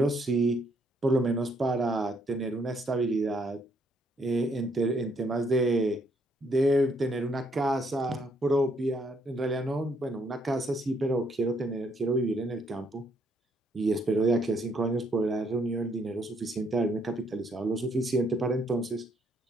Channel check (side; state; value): both; normal; correlation 0.70